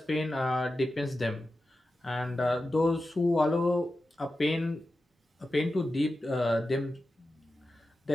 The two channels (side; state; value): both; normal; correlation 0.92